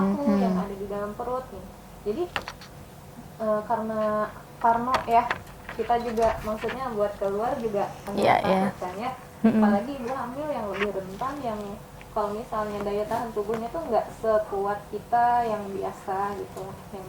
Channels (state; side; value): identical; both; correlation 1.00